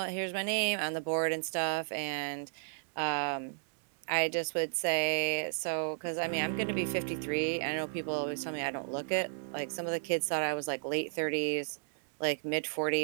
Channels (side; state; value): left; silent; digital silence